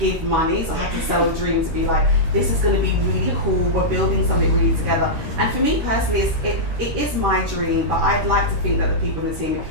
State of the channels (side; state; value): left; late; 13 ms